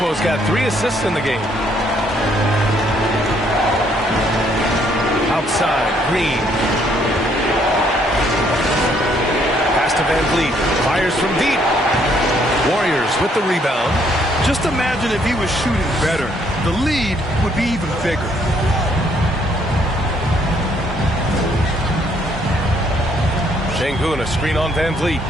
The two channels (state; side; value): normal; both; correlation 0.67